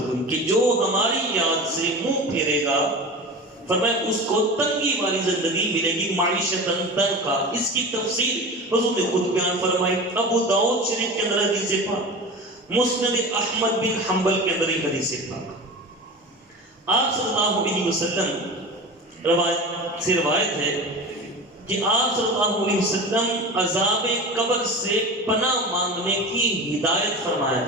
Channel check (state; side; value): normal; both; correlation 0.31